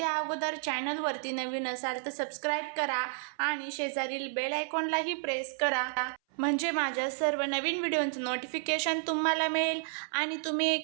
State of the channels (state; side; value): silent; left; 57 dB below the other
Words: अगोदर चॅनलवरती नवीन असाल तर सबस्क्राईब करा आणि शेजारील बेल आयकॉनलाही प्रेस करा, म्हणजे माझ्या सर्व नवीन व्हिडिओचं नोटिफिकेशन तुम्हाला मिळेल आणि तुम्ही